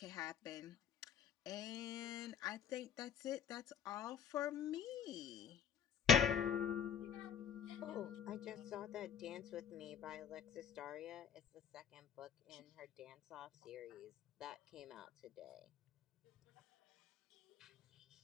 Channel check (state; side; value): quieter; right; 7.9 dB